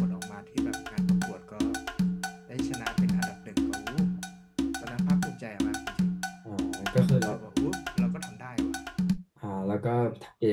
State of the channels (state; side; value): identical; both; correlation 1.00